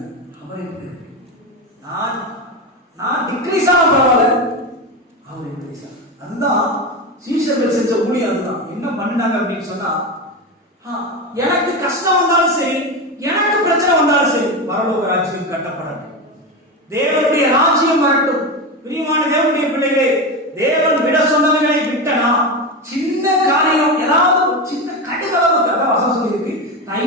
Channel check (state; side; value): normal; both; correlation 0.18